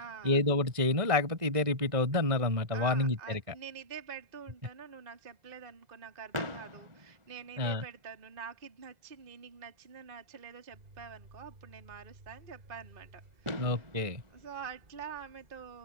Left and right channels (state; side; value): late; left; 2.0 ms